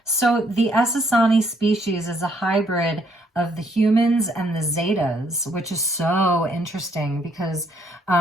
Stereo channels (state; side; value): normal; both; correlation 0.69